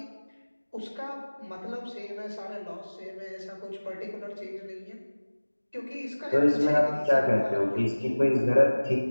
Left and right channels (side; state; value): both; inverted; correlation -1.00